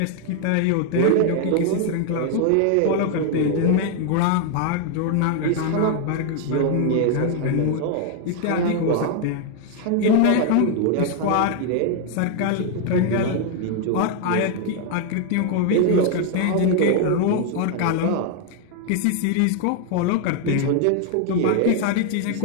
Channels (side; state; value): both; different; correlation 0.00